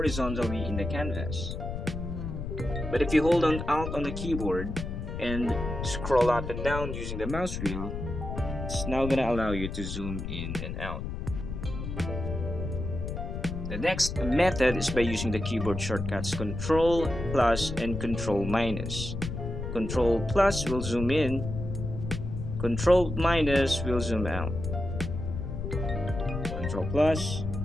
in the canvas. But if you hold on Alt on the keyboard and scroll up and down using the mouse wheel, it's now going to allow you to zoom in and out. The next method is by using the keyboard shortcuts Ctrl plus and Ctrl minus. Ctrl plus will zoom in, Ctrl minus will zoom out. Ctrl plus,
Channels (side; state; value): left; noise; rumble, 5 dB below the sound